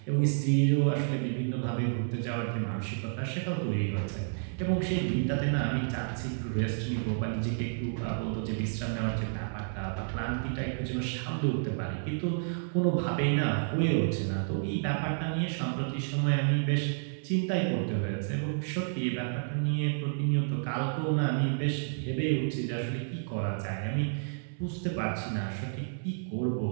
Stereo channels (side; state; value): left; silent; 57 dB below the other